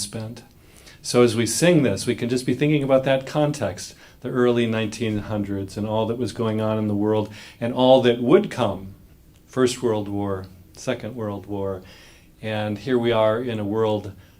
So as we sing this, we can just be thinking about that context, the early 1900s and all that was going on in the world and all that would come. First World War, Second World War, and here we are in a world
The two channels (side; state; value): both; identical; correlation 1.00